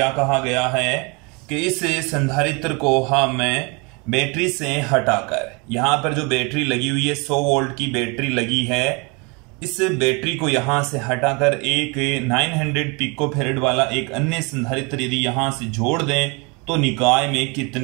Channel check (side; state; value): left; quieter; 29.9 dB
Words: कहा गया है कि इस संधारित्र को हमें बैटरी से हटाकर, यहां पर जो बैटरी लगी हुई है 100 वोल्ट की बैटरी लगी है, इस बैटरी को यहां से हटाकर एक 900 पिकोफैरेड वाला एक अन्य संधारित्र यदि यहां से जोड़ दें तो निकाय में